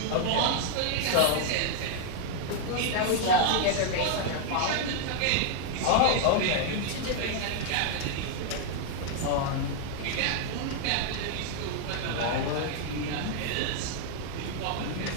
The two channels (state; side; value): different; both; correlation 0.00